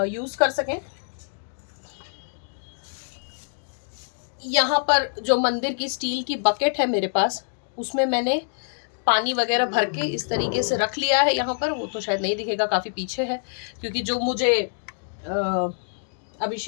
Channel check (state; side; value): silent; right; digital silence